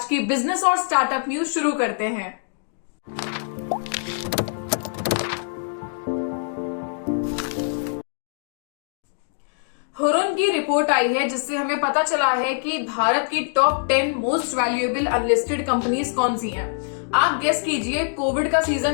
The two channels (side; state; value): right; silent; digital silence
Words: की बिजनेस और स्टार्टअप न्यूज शुरू करते हैं। हुरुन की रिपोर्ट आई है जिससे हमें पता चला है कि भारत की top 10 most valuable unlisted companies कौन सी हैं। आप गेस कीजिए। कोविड का